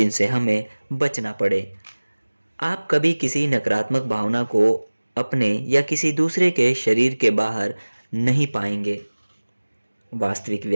हमें बचना पड़े। आप कभी किसी नकारात्मक भावना को अपने या किसी दूसरे के शरीर के बाहर नहीं पाएंगे। वास्तविक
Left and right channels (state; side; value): inverted; both; correlation -1.00